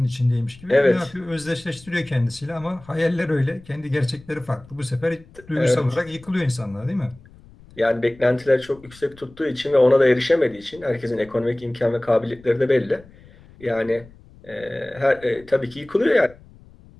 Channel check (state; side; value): noise; left; rumble, 24 dB below the sound